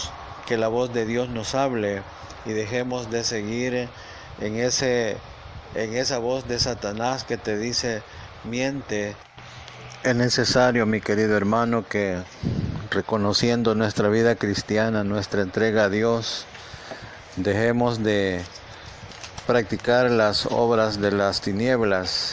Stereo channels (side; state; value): both; identical; correlation 1.00